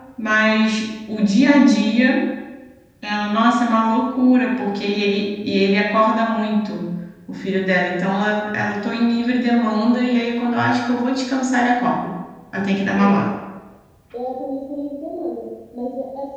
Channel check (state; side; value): identical; both; correlation 1.00